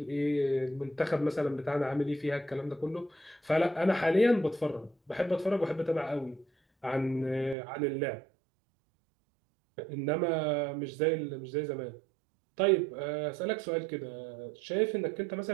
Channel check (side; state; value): left; drops out; at 7.6 s